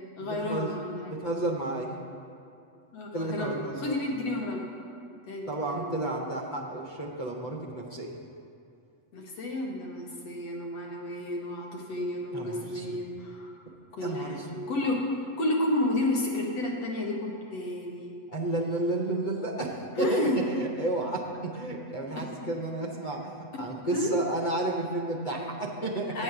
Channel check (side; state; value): right; late; 8.1 ms